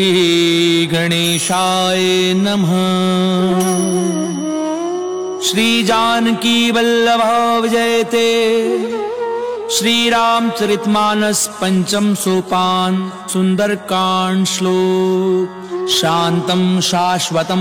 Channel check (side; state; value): both; identical; correlation 1.00